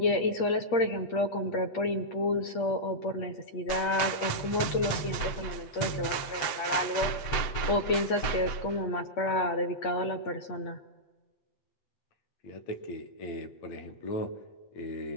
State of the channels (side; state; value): right; late; 7.8 ms